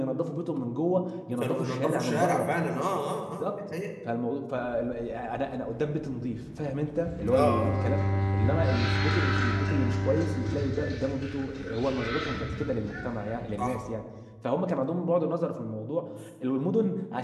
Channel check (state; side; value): identical; both; correlation 1.00